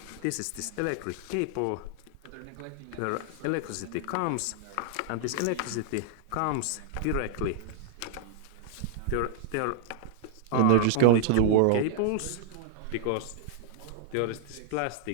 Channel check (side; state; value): both; different; correlation -0.01